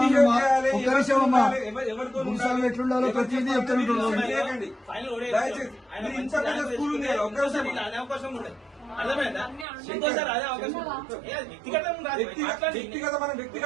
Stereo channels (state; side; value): drops out; left; at 9.7 s